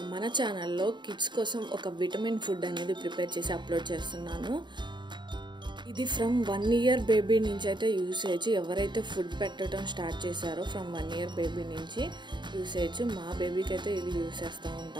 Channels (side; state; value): left; late; 0.22 ms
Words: మన ఛానల్లో కిడ్స్ కోసం ఒక విటమిన్ ఫుడ్ అనేది ప్రిపేర్ చేసి అప్లోడ్ చేస్తున్నాను. ఇది ఫ్రమ్ 1 year బేబీ నుంచి అయితే యూస్ చేయొచ్చు. ఎవరైతే ఫుడ్ పెట్టడం స్టార్ట్ చేశారో ఫ్రమ్ 1 year బేబీ నుంచి యూస్ చేయొచ్చు. మా బేబీకి అయితే ఇది యూస్ చేస్తూ